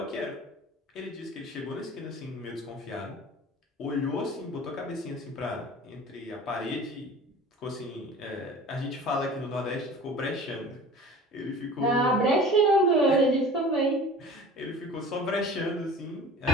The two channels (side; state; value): both; normal; correlation 0.42